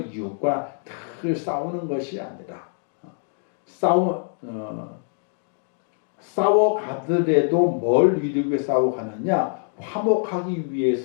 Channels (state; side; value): silent; right; 62 dB below the other